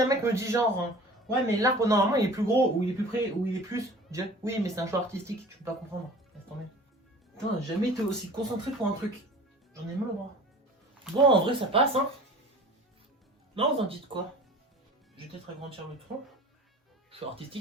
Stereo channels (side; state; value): both; normal; correlation 0.43